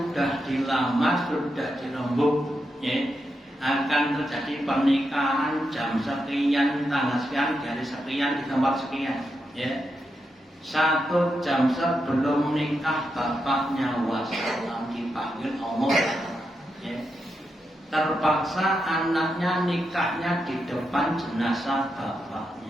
dilamar, sudah dirembuk, ya, akan terjadi pernikahan jam sekian, tanggal sekian, hari sekian, di tempat sekian, ya. 1 jam sebelum nikah bapaknya wassalam dipanggil Allah, ya. Terpaksa anaknya nikahnya di depan jenazah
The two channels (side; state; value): both; normal; correlation 0.85